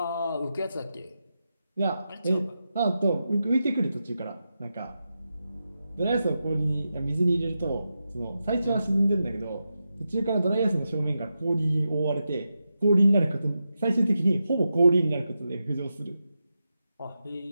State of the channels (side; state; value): both; inverted; correlation -0.89